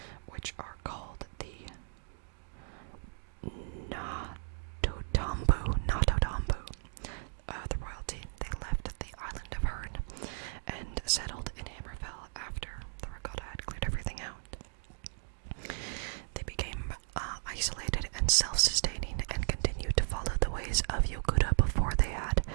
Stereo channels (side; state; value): left; silent; digital silence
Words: which are called the Natotambu, the royalty, they left the island of Hern and settled in Hammerfell after the Regatta had cleared everything out. They became isolated and self-sustaining and continued to follow the ways of Yokuda before they had